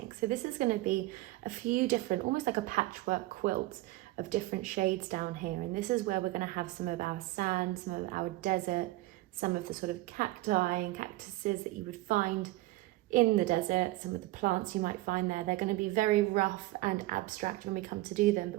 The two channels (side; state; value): left; quieter; 18.4 dB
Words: So this is going to be a few different, almost like a patchwork quilt of different shades down here. And this is where we're going to have some of our sand, some of our desert, some of the sort of cacti and cactuses that you would find in the desert, some of the plants you might find there. They're going to be very rough and abstract when we come to do them,